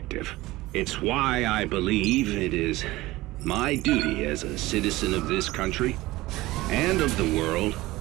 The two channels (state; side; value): quieter; left; 18.8 dB